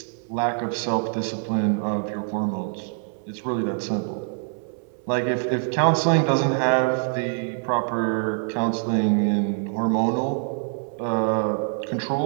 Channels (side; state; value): left; silent; 61 dB below the other